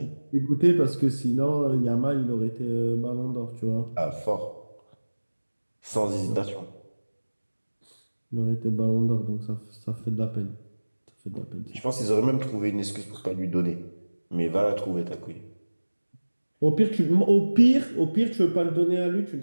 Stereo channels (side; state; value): both; inverted; correlation -1.00